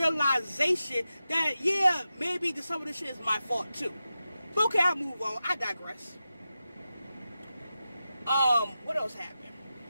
that, yeah, maybe some of this shit is my fault too. But okay, I'll move on. I digress. What else happened?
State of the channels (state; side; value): inverted; both; correlation -0.92